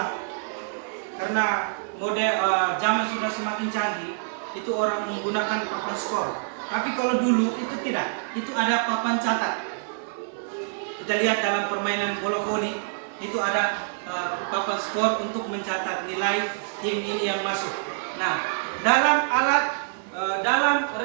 karena model zaman sudah semakin canggih, itu orang menggunakan papan skor. Tapi kalau dulu itu tidak, itu ada papan catat. Kita lihat dalam permainan bola voli itu ada papan skor untuk mencatat nilai tim ini yang masuk. Nah, dalam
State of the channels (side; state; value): left; silent; digital silence